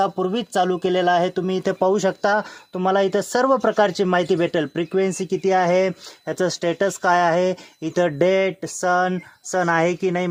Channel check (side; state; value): both; identical; correlation 1.00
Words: चालू केलेला आहे। तुम्ही इथे पाहू शकता, तुम्हाला इथं सर्व प्रकारची माहिती भेटेल। फ्रिक्वेन्सी किती आहे, याचं स्टेटस काय आहे, इथं डेट, सन आहे की नाही,